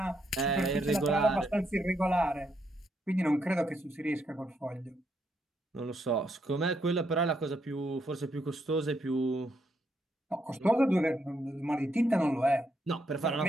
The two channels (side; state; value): both; normal; correlation 0.77